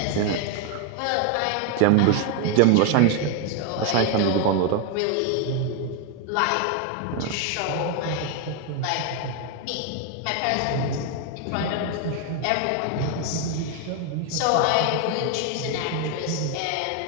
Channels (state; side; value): different; both; correlation 0.01